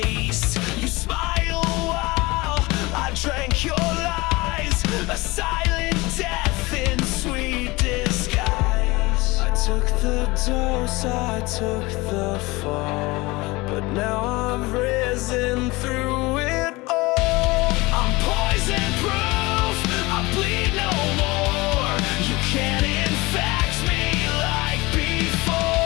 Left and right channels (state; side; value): quieter; right; 22.7 dB